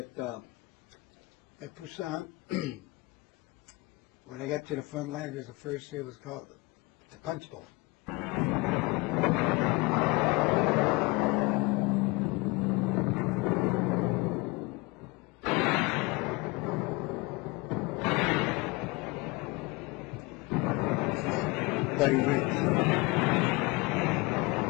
Busan. When I got to the front line, it was the first year. It was called the PUNCHBOWL. Bloody Ridge.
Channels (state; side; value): quieter; right; 24.7 dB